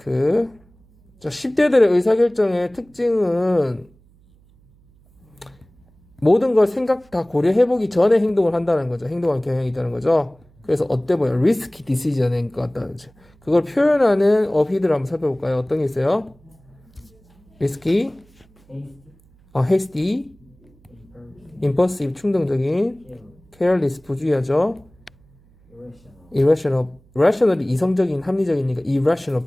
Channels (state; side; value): noise; right; hum, 30 dB below the sound